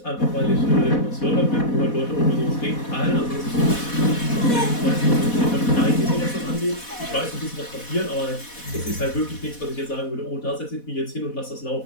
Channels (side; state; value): right; late; 4.1 ms